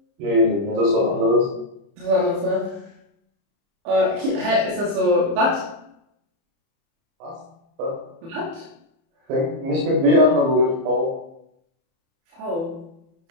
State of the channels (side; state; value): left; late; 30 ms